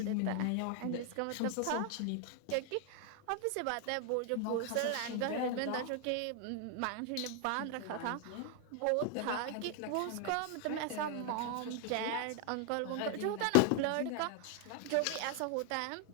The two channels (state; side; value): different; both; correlation 0.00